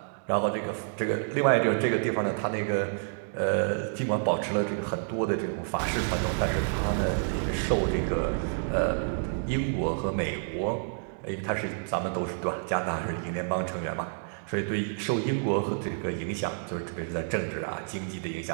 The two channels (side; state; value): left; silent; digital silence